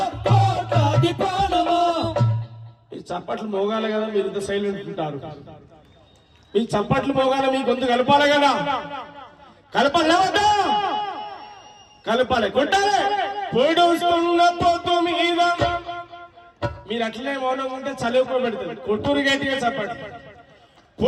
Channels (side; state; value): both; identical; correlation 1.00